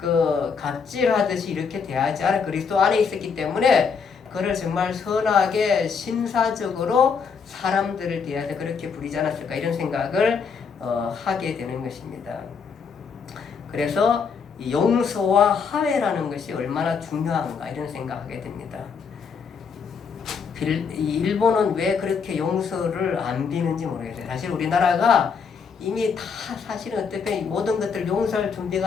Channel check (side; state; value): right; quieter; 5.9 dB